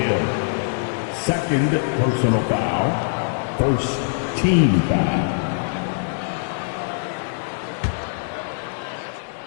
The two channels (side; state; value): right; silent; digital silence